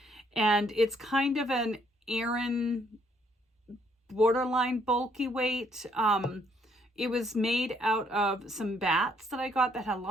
and it's kind of an Aran borderline bulky weight. It was made out of some bats that I got that had a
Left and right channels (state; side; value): normal; both; correlation 0.68